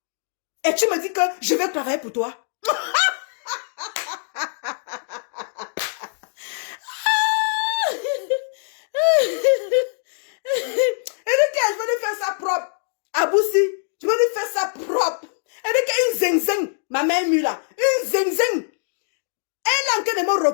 Et tu me dis que je vais travailler pour toi. Et je vais lui faire ça propre. Aboussi, je vais lui faire ça propre. Et une zing-zing, ma mère mue là. Une zing-zing. Elle est en train de me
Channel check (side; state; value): right; silent; digital silence